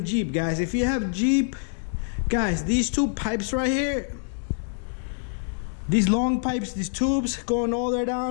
Jeep, guys. If you have Jeep, guys, these two pipes right here, these long pipes, these tubes going all the way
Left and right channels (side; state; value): right; silent; digital silence